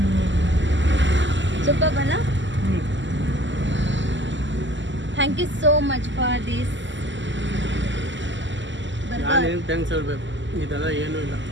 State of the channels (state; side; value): late; left; 0.54 ms